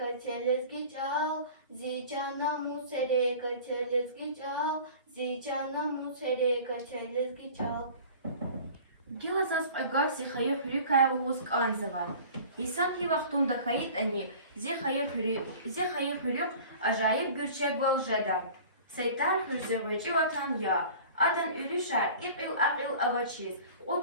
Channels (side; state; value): both; inverted; correlation -0.43